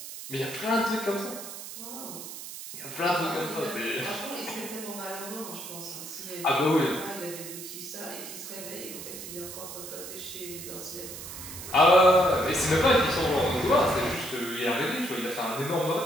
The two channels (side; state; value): right; noise; hiss, 10 dB below the sound